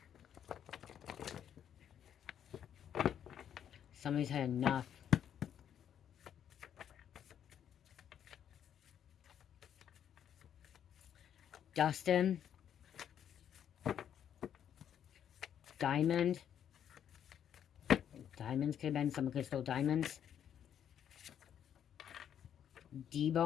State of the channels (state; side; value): quieter; right; 9.3 dB